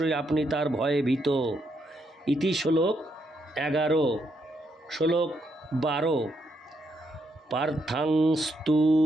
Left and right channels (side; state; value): both; normal; correlation 0.78